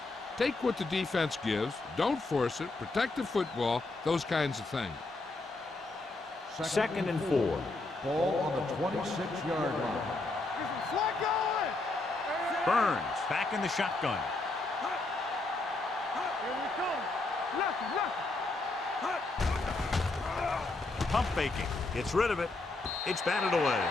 Take what the defense gives, don't force it, protect the football, those kinds of things. Second and 4. Ball on the 26-yard line. Flag going. Burns back in the shotgun. Here we come. Left. Pump faking. Gets rid of it. It's batted away.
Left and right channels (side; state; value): right; quieter; 3.2 dB